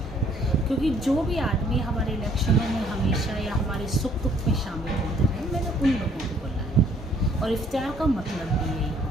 क्योंकि जो भी आदमी हमारे इलेक्शनों में हमेशा या हमारे सुख दुख में शामिल होते रहे, मैंने उन लोगों को बुलाया। और इफ्तियार का मतलब भी यही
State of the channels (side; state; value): both; normal; correlation 0.62